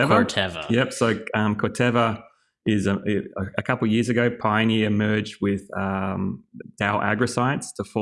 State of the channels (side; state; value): both; identical; correlation 1.00